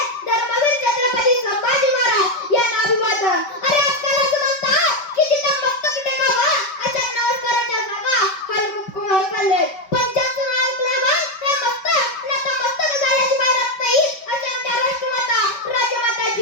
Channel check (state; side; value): late; right; 5.2 ms